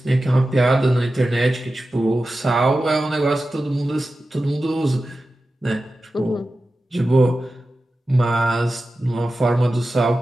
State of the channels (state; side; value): normal; both; correlation 0.93